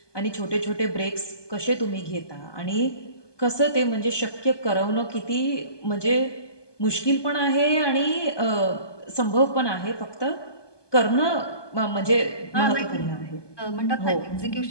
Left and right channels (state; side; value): late; right; 1.2 ms